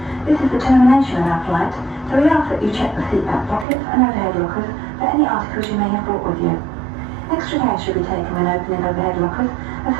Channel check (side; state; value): left; drops out; at 3.7 s